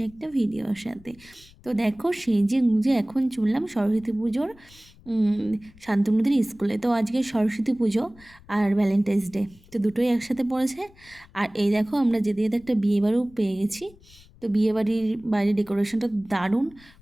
একটা ভিডিওর সাথে। তো দেখো, সেজে গুঁজে এখন চললাম সরস্বতী পুজোর শান্তনুদের স্কুলে। তো আজকে সরস্বতী পুজো আর ভ্যালেন্টাইন্স ডে, তো দুটোই একসাথে পড়েছে। আর এই দেখো, আমরা যেতে যেতে একটা বিয়েবাড়িও পেয়ে গেছি। তো বিয়েবাড়ির বাইরে ডেকোরেশনটা দারুণ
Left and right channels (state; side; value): noise; left; rumble, 25 dB below the sound